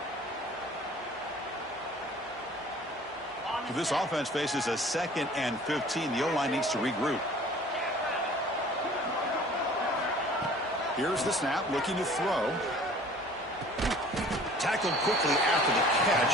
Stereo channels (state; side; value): normal; both; correlation 0.49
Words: This offense faces a 2nd and 15. The O-line needs to regroup. Here's the snap, looking to throw. Tackled quickly after the